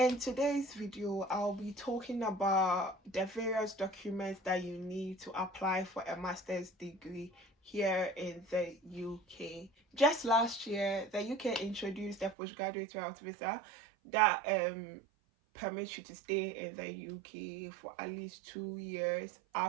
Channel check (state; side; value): drops out; left; at 12.4 s